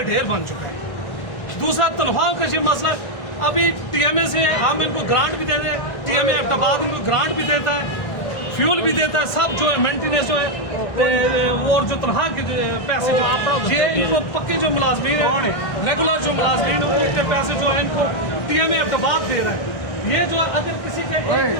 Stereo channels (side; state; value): right; late; 1.6 ms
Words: ढेर बन चुका है। दूसरा तनख्वाह का ये मसला, अभी TMA से हम इनको ग्रांट भी देते हैं, TMA एबटाबाद इनको ग्रांट भी देता है, फ्यूल भी देता है, सब जो है मेंटेनेंस जो है और जो तनख्वाह के पैसे जो आप ये इनको पक्के जो मुलाजमीन है, रेगुलर जो मुलाजमीन है, उनके पैसे जो है इनको TMA एबटाबाद दे रहा है। ये जो अगर किसी के एक